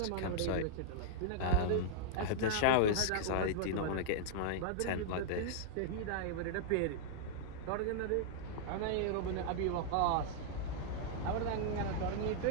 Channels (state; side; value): different; both; correlation -0.02